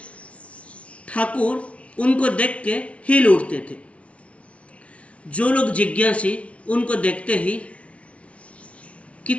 ठाकुर उनको देख के हिल उठते थे। जो लोग जिज्ञासी, उनको देखते ही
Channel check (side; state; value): right; late; 0.063 ms